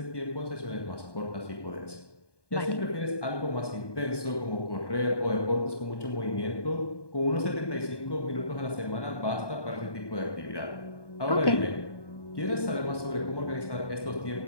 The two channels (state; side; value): late; right; 1.2 ms